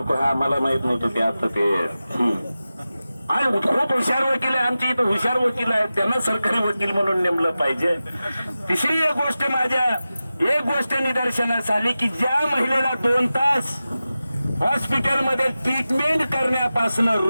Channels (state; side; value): inverted; both; correlation -0.94